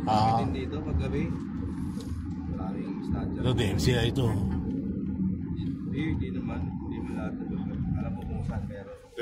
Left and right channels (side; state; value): both; identical; correlation 1.00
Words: Ah. Dito, paggabi. Maraming statue. Ito, DMCI ito. Hindi naman. Hindi mo lahat na lugar. Alam mo kung saan meron.